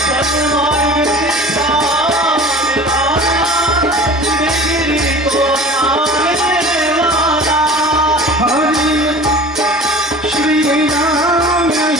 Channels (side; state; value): both; normal; correlation 0.41